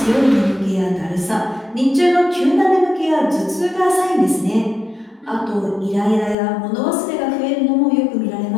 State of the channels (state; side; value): drops out; right; at 6.4 s